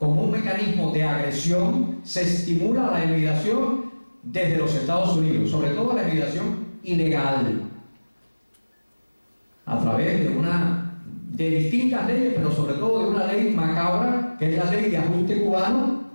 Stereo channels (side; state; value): both; inverted; correlation -1.00